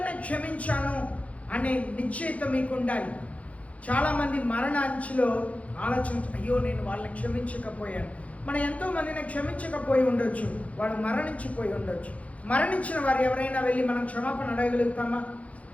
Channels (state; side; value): late; right; 0.066 ms